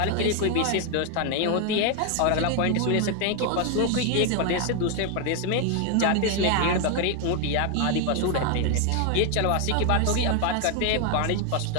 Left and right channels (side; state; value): both; different; correlation 0.01